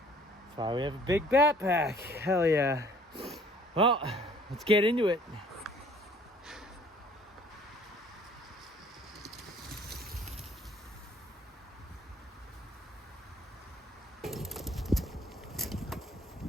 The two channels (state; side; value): normal; both; correlation 0.55